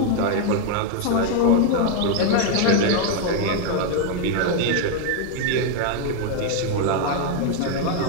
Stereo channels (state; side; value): different; both; correlation 0.01